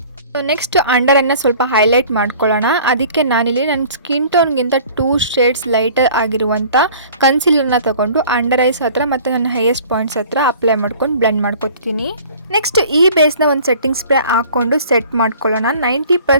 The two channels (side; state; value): both; inverted; correlation -0.48